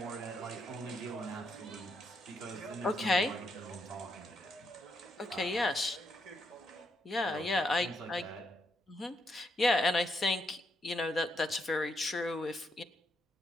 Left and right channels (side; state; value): both; normal; correlation 0.78